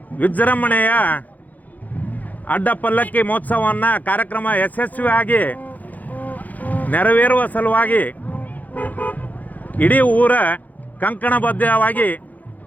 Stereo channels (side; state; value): right; late; 0.080 ms